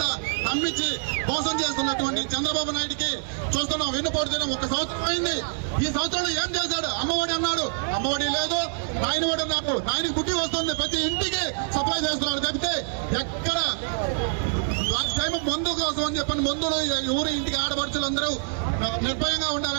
అమ్మించి మోసం చేస్తున్నటువంటి చంద్రబాబు నాయుడికి చూస్తున్నాం. వెన్నుపోటు దినం 1 సంవత్సరం అయింది. ఈ సంవత్సరంలో ఏం చేశాడు? అమ్మఒడి అన్నాడు, అమ్మఒడి లేదు. నాయనఒడి అన్నాడు, నాయనకి బుద్ధి వస్తుంది, ప్రతి ఇంటికి సప్లై చేస్తున్నాడు. తప్పితే ఎక్కడ లాస్ట్ టైం మందు కోసం అని చెప్పండి, మందులో ఊరి ఇంటికి ఆడపడుచులందరూ నిర్భయంగా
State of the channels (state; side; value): silent; left; 61 dB below the other